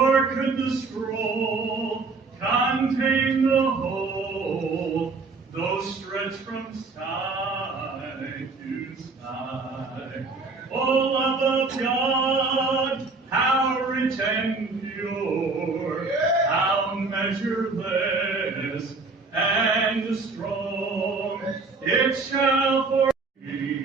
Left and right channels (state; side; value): quieter; left; 4.0 dB